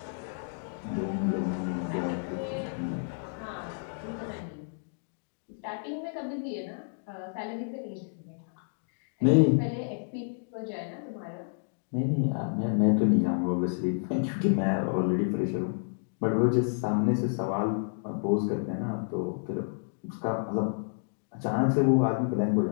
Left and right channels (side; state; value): right; silent; digital silence